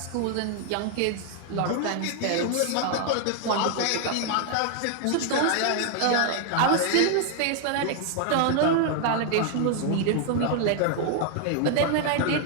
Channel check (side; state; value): both; different; correlation 0.00